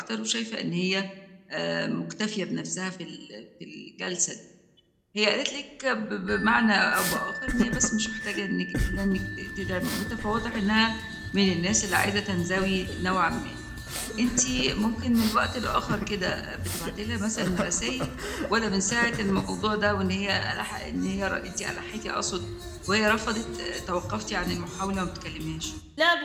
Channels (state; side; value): identical; both; correlation 1.00